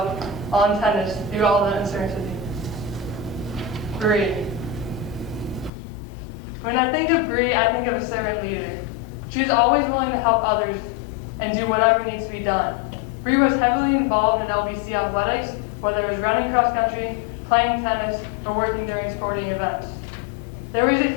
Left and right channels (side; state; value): right; drops out; at 5.7 s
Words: on tennis through all the uncertainty. Bree. When I think of Bree, I think of a servant leader. She is always willing to help others and do whatever needs to be done. Bree was heavily involved in LBC Athletics, whether it was running cross country, playing tennis, or working during sporting events. There was a